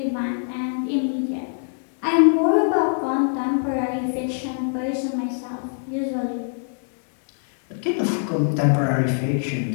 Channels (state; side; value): silent; right; 63 dB below the other